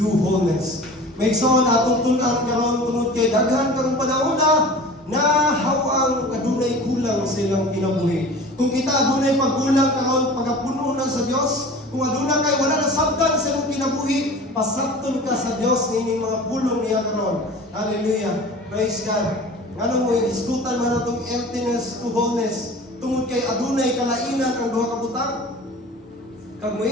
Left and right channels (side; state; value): both; normal; correlation 0.40